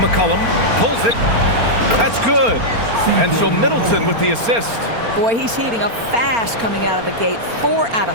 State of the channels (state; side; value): late; left; 4.3 ms